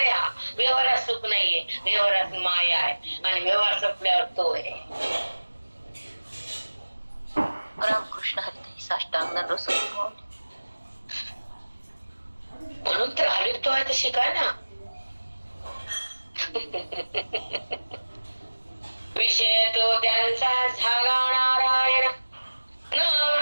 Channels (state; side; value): inverted; both; correlation -1.00